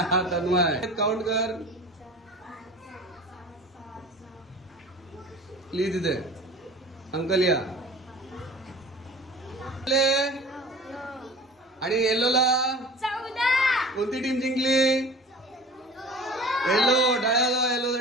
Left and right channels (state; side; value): normal; both; correlation 0.40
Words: तन्मय काउंट कर प्लीज. इथे अंकल या. आणि येलोला 14 कोणती टीम जिंकली? येलो. टाळ्या येलो